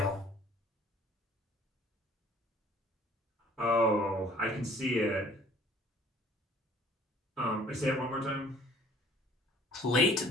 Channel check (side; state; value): both; normal; correlation 0.54